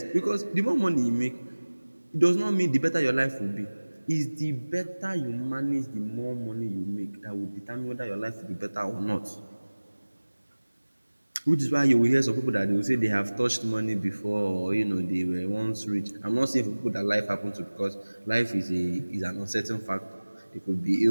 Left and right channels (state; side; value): inverted; both; correlation -1.00